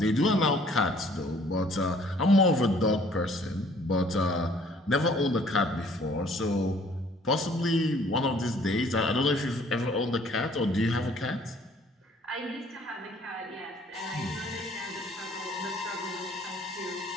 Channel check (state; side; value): normal; both; correlation 0.58